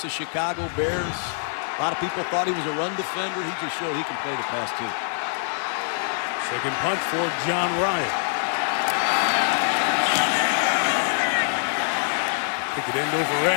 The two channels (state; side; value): silent; right; 58 dB below the other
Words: the Chicago Bears. A lot of people thought he was a run defender. He just showed he can play the pass too. 2nd punt for John Ryan. Kick it end over